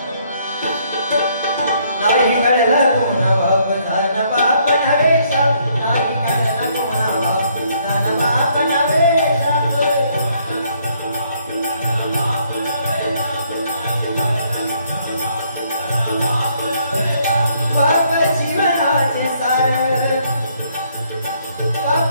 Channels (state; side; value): inverted; both; correlation -0.68